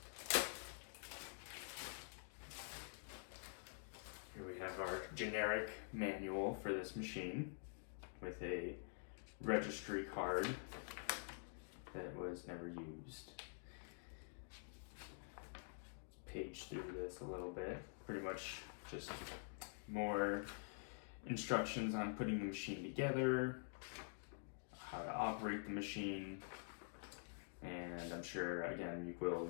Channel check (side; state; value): right; silent; digital silence